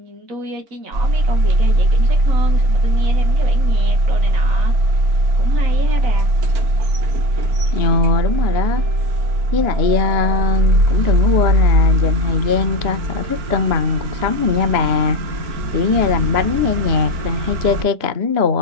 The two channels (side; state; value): left; late; 3.0 ms